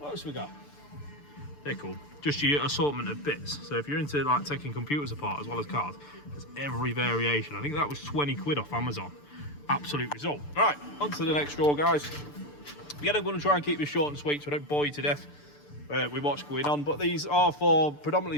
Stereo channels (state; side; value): late; right; 6.8 ms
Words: else we got? They're cool. Just your assortment of bits. So if you're into like taking computers apart as well as cars, there's every variation. I think that was 20 quid off Amazon. Absolute result. Right, on to the next drawer, guys. Again, I'm going to try and keep this short and sweet so I don't bore you to death with what's going on. But these are